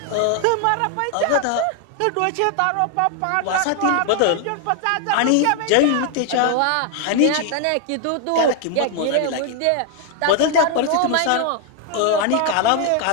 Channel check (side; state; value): both; different; correlation 0.00